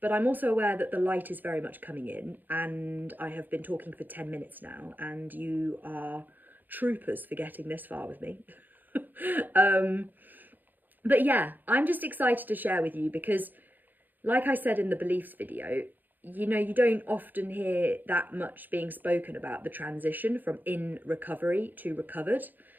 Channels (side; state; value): left; late; 0.087 ms